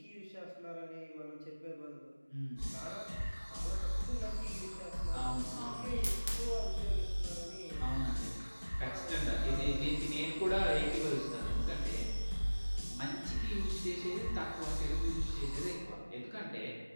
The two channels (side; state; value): both; inverted; correlation -1.00